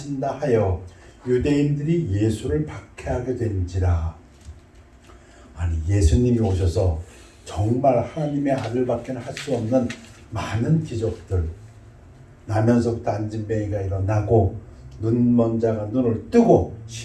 하여 유대인들이 예수를 박해하게 된지라. 아니, 예수님이 오셔서 정말 하나님의 아들밖에 할 수 없는 많은 기적들, 나면서부터 안진뱅이가 일어나고 눈먼 자가 눈을 뜨고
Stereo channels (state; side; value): identical; both; correlation 1.00